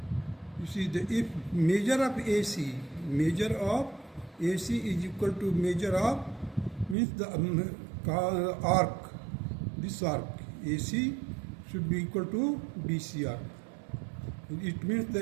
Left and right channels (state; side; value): drops out; left; at 7.0 s